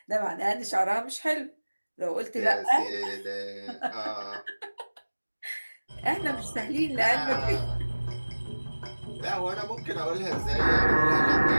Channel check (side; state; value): both; inverted; correlation -1.00